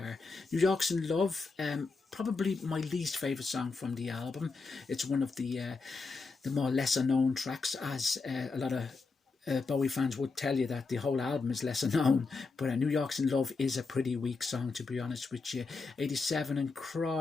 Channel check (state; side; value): quieter; right; 4.2 dB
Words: New York's in Love, probably my least favourite song from the album. It's one of the more lesser known tracks, as a lot of Bowie fans would tell you that the whole album is lesser known, but New York's in Love is a pretty weak song, to be honest with you. 87 and